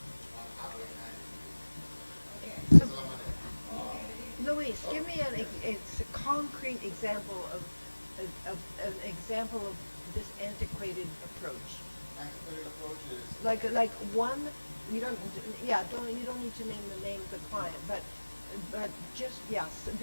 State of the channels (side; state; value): both; inverted; correlation -1.00